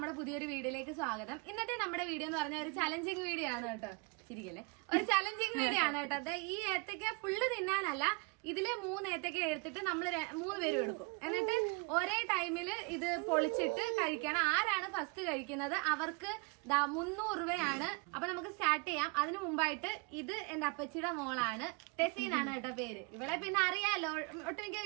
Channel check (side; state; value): left; quieter; 32.3 dB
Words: പുതിയൊരു വീഡിയോയിലേക്ക് സ്വാഗതം. ഇന്നത്തെ നമ്മുടെ വീഡിയോ എന്ന് പറഞ്ഞ ഒരു ചലഞ്ചിങ് വീഡിയോ ആണ് കേട്ടോ. ശരിക്കല്ലേ, ഒരു ചലഞ്ചിങ് വീഡിയോ ആണ് കേട്ടോ. അത് ഈ ഏത്തക്ക ഫുള്ള് തിന്നാനല്ല, ഇതില് 3 ഏത്തക്ക എടുത്തിട്ട് നമ്മൾ 3 പേരും എടുക്കും. എന്നിട്ട് ഒരേ ടൈമില് ഇത് പൊളിച്ചിട്ട് കഴിക്കണം. ആരാണ് ഫസ്റ്റ് കഴിക്കുന്നത് അവർക്ക് 300 രൂപയാണ്. അപ്പൊ നമുക്ക് സ്റ്റാർട്ട് ചെയ്യാം. അതിനു മുമ്പായിട്ട് ഇത് എന്റെ അപ്പച്ചിയുടെ മോളാണ്, ടെസീനാണ് കേട്ടോ പേര്. ഇവളെ പിന്നെ അറിയാലോ, ഒട്ടുമിക്ക